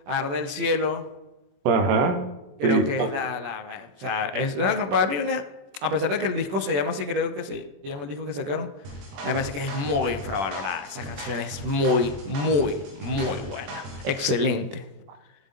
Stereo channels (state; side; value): late; left; 21 ms